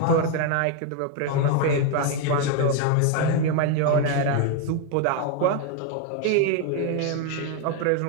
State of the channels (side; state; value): both; different; correlation 0.01